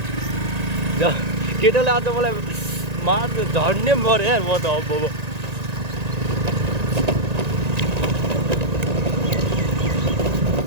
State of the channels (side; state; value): left; late; 1.9 ms